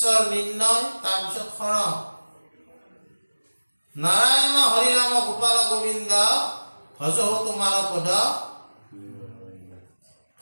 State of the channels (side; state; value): both; inverted; correlation -1.00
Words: নিৰ্ণয়, তাৰপিছত শৰণ। নাৰায়ণ হৰি ৰাম গোপাল গোবিন্দ, ভজহো তোমাৰ পদ,